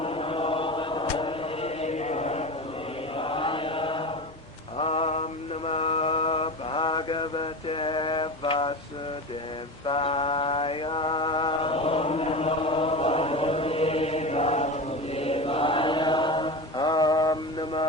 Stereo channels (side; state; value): left; noise; hum, 28 dB below the sound